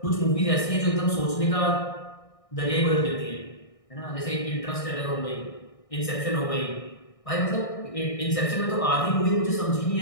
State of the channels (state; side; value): late; right; 1.6 ms